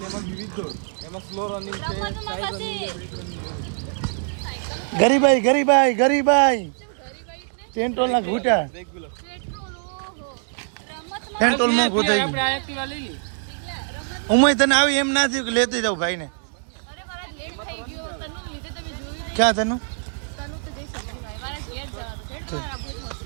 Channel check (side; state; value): left; silent; digital silence